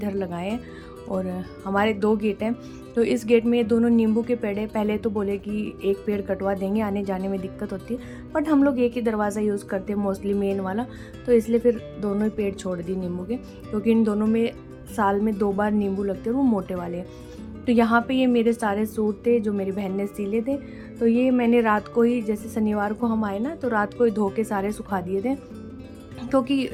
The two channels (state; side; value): identical; both; correlation 1.00